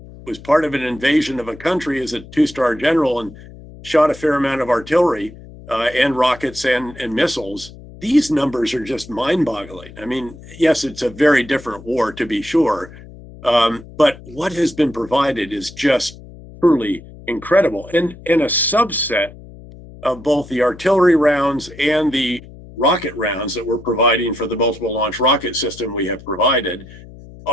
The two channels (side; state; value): left; noise; hum, 18 dB below the sound